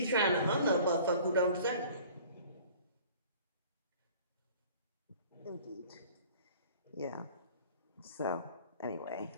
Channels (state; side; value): inverted; both; correlation -0.48